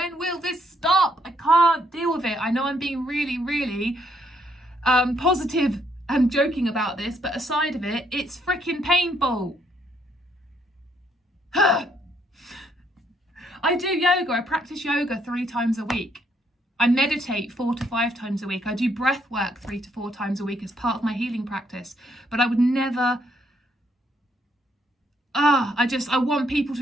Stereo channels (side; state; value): both; normal; correlation 0.71